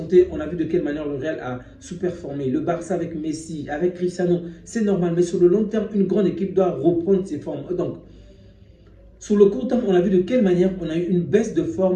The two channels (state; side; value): identical; both; correlation 1.00